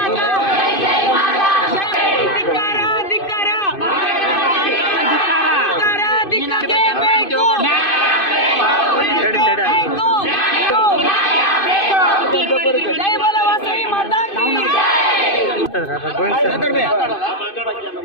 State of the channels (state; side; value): late; right; 2.5 ms